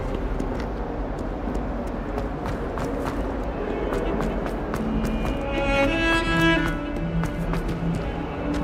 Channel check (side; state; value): both; identical; correlation 1.00